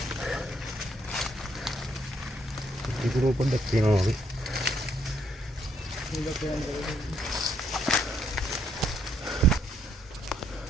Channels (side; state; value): both; normal; correlation 0.72